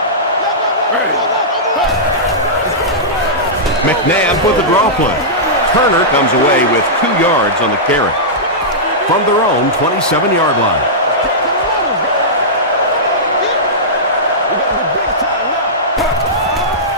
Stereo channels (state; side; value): normal; both; correlation -0.14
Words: McNabb with the draw play. Turner comes away with 2 yards on the carry from their own 27-yard line.